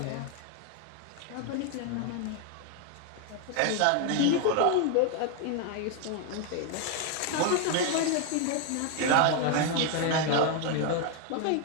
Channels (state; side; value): different; both; correlation 0.01